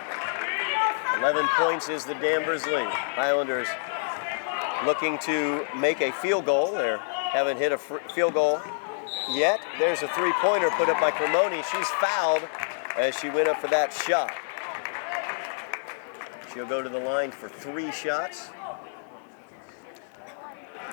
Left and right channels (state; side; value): silent; right; 60 dB below the other